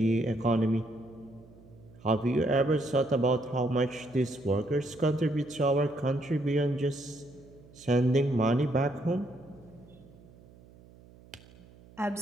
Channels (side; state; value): right; noise; hum, 24 dB below the sound